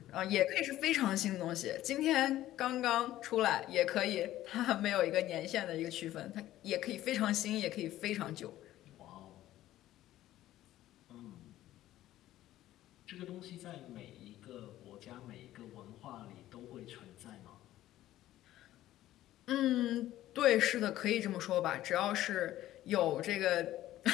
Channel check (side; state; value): right; quieter; 14.2 dB